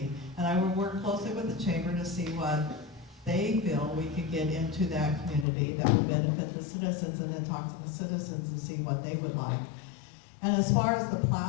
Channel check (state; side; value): drops out; right; at 5.5 s